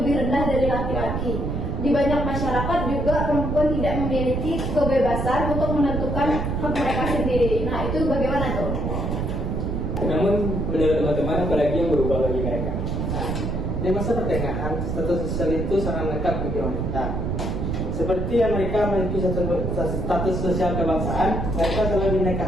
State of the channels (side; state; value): right; noise; rumble, 2 dB below the sound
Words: rendah dari laki-laki. Di banyak masyarakat juga perempuan tidak memiliki kebebasan untuk menentukan hak mereka sendiri. Nah, itu bagaimana tuh? Namun menurut teman-teman, apalagi yang berubah bagi mereka? Di masa pertengahan, status sosial itu sangat lengkap bagi wanita. Seperti yang mereka memiliki status sosial kebangsaan, mereka selalu